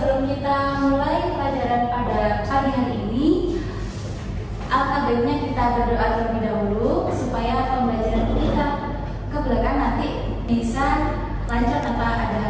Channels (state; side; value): identical; both; correlation 1.00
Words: kita mulai pelajaran pada pagi hari ini, alangkah baiknya kita berdoa terlebih dahulu supaya pembelajaran kita ke belakang nanti bisa lancar tanpa ada